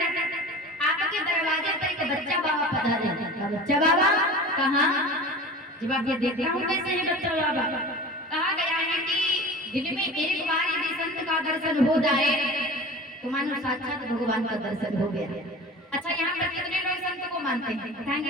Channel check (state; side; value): normal; both; correlation 0.37